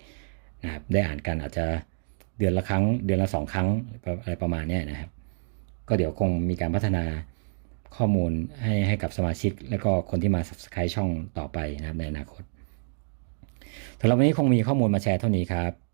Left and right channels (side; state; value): left; silent; digital silence